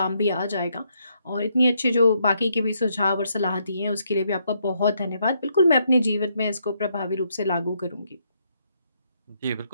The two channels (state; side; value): inverted; both; correlation -0.75